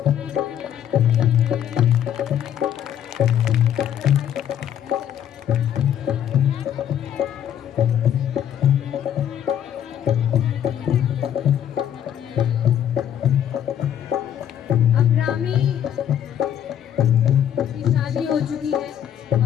अब रामी की शादी हो चुकी है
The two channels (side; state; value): right; quieter; 9.9 dB